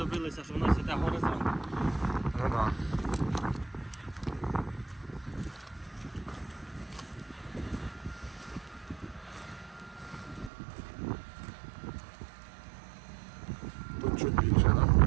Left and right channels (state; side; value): drops out; left; at 10.5 s